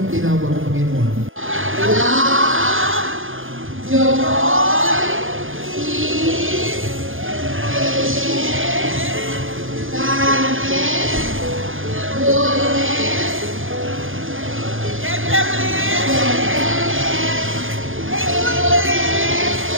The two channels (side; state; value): left; late; 0.59 ms